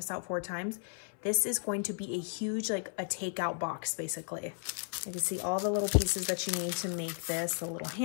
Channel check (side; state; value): right; silent; 55 dB below the other